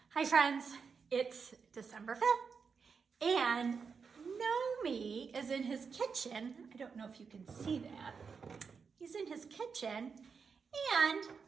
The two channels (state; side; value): quieter; left; 5.6 dB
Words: Hi friends, it's December 5th and Nomi is in his kitchen. I don't know if you can see that. He's in his kitchen and